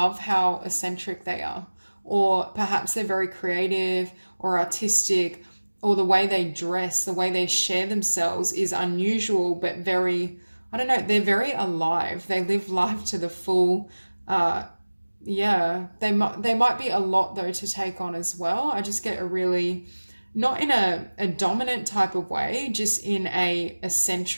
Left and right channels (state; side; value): inverted; both; correlation -1.00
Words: how eccentric they are. Or perhaps they're very creative or artistic, or the way they dress, the way they share themselves is unusual, but very, I don't know, they're very alive. They live life to the full. Yeah, they might be a lot though to take on as well. I just get a really, not in a dominant type of way, just in a